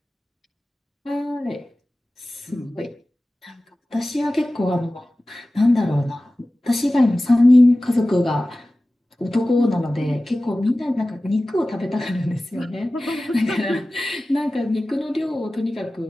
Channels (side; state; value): both; normal; correlation 0.96